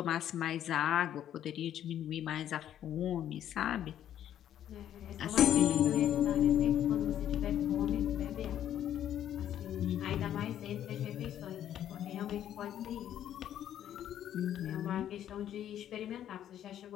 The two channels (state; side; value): quieter; right; 10.8 dB